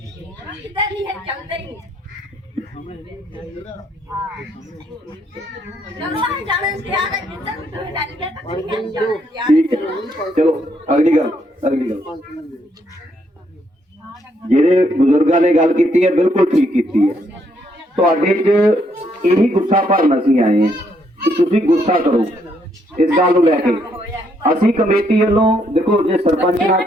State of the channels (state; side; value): normal; both; correlation 0.73